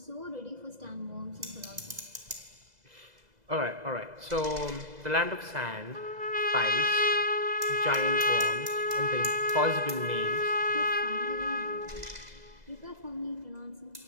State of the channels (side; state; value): left; late; 2.0 ms